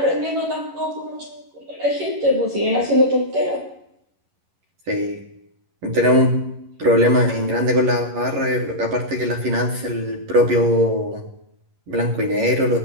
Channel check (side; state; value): left; late; 11 ms